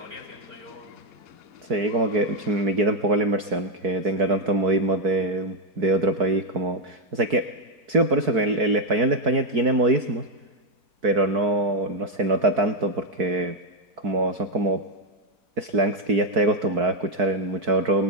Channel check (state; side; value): late; left; 4.6 ms